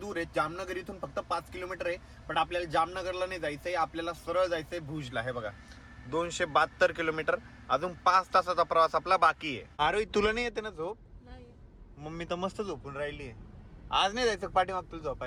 दूर आहे. जामनगर इथून फक्त 5 किलोमीटर आहे, पण आपल्याला जामनगरला नाही जायचंय, आपल्याला सरळ जायचंय भुजला. हे बघा 272 किलोमीटर, अजून 5 तासाचा प्रवास आपला बाकी आहे. आरोही तुला नाही येते ना झोप? नाही. मम्मी तर मस्त झोपून राहिली आहे. आज नाही जायचं पाठीमाग तुला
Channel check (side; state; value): both; identical; correlation 1.00